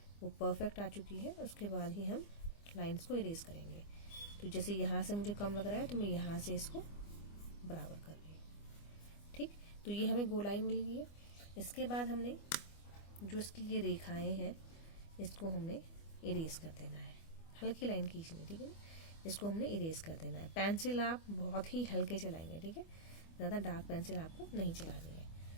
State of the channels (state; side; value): late; right; 25 ms